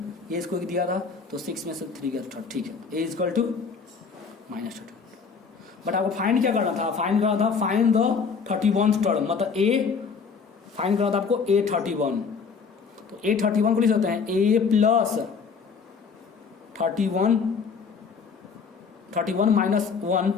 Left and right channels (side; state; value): right; quieter; 5.5 dB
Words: ये इसको दिया था तो 6 में से 3 गया 3, ठीक है A equal to minus 32। But आपको फाइंड क्या करना था, फाइंड करना था फाइंड द 31st टर्म, मतलब A फाइंड करना था आपको A31, तो A31 को लिख सकते हैं A प्लस 31 माइनस